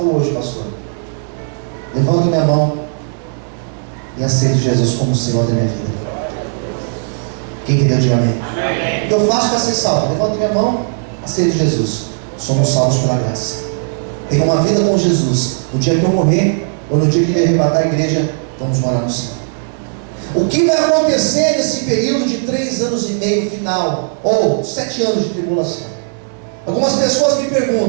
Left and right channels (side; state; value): left; silent; digital silence